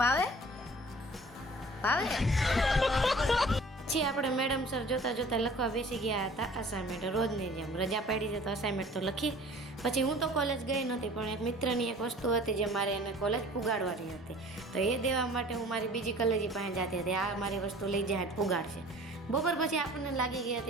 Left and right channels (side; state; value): both; normal; correlation 0.48